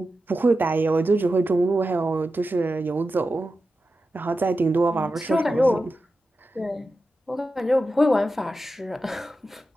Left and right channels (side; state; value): both; normal; correlation 0.91